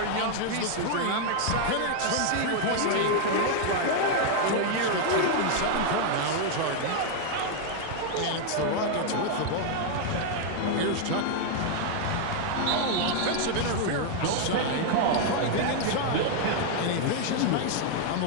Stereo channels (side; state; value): both; different; correlation 0.00